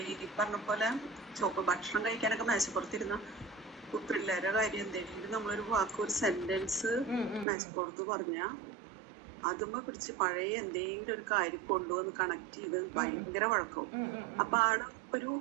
ഈ പറഞ്ഞ പോലെ ഭക്ഷണം കഴിക്കാനൊക്കെ മേശപ്പുറത്തിരുന്ന പിള്ളേരുടെ കാര്യം എന്തെങ്കിലും നമ്മളൊരു വാക്ക്, ഒരു സെന്റൻസ് മേശപ്പുറത്ത് പറഞ്ഞാ അതുമ്മ പിടിച്ച് പഴയ എന്തെങ്കിലും ഒരു കാര്യം കൊണ്ടുവന്ന് കണക്ട് ചെയ്ത് ഭയങ്കര വഴക്കവും. അപ്പൊ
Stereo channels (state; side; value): drops out; left; at 7.5 s